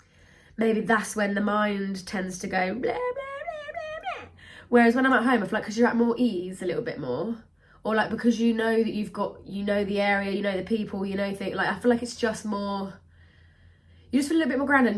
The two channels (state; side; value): identical; both; correlation 1.00